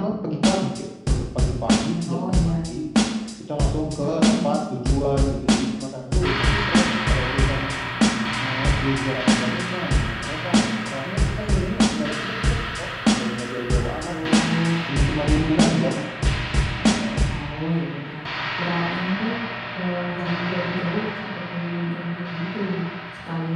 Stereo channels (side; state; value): both; identical; correlation 1.00